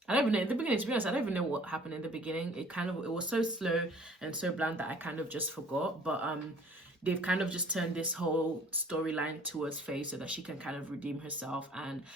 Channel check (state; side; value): normal; both; correlation 0.53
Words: don't even know in the beginning, to be honest, I don't even know what happened in the beginning. It was so slow and so bland that I kind of just forgot. But they've kind of just turned this whole storyline towards Faye so that she can kind of redeem herself. And